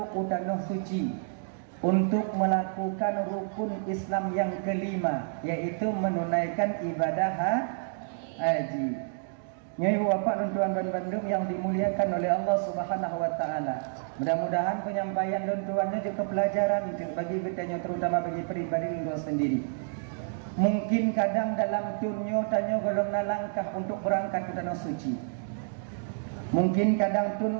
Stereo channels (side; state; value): left; silent; digital silence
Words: utanah suci untuk melakukan rukun Islam yang kelima, yaitu menunaikan ibadah haji. Nyai bapak dan tuan dan bandung yang dimuliakan oleh Allah Subhanahu wa taala. Mudah-mudahan penyampaian dan tuannya juga pelajaran bagi kita terutama bagi pribadi lu sendiri. Mungkin kadang dalam tunyo tanya golong langkah untuk berangkat ke tanah suci. Mungkin kadang